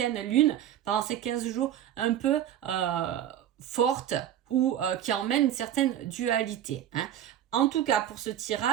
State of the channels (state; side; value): quieter; left; 11.0 dB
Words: lune pendant ces 15 jours un peu forte ou qui emmène une certaine dualité. Hein. En tout cas, pour ce